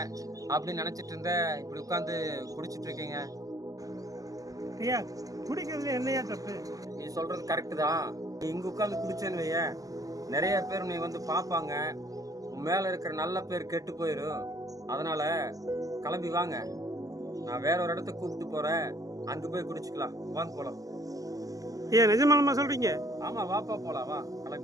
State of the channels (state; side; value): late; left; 0.17 ms